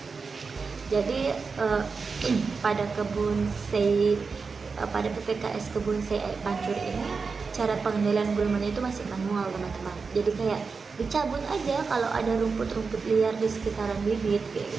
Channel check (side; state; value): left; quieter; 4.8 dB